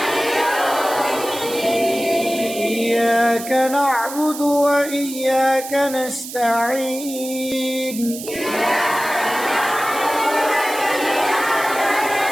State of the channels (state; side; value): noise; right; hiss, 11 dB below the sound